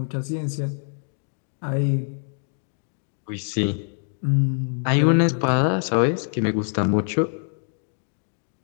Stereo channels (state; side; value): silent; right; 62 dB below the other